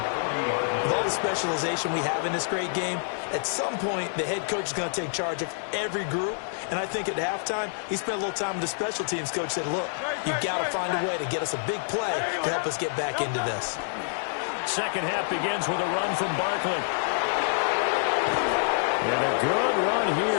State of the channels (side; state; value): right; silent; digital silence